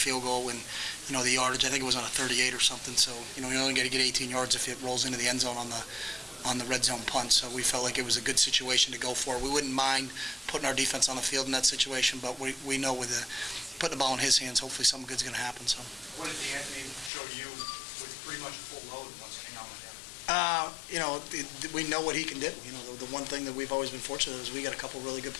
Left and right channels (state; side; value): drops out; right; at 17.1 s